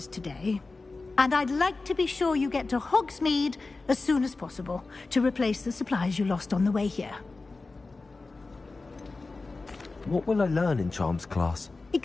today. And I'd like to be sure you get to Hogsmeade as soon as possible to replace the supplies you lost on the way here. What will I learn in Charms class?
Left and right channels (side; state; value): right; quieter; 3.6 dB